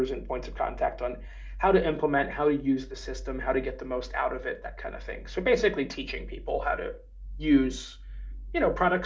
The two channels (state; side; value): identical; both; correlation 1.00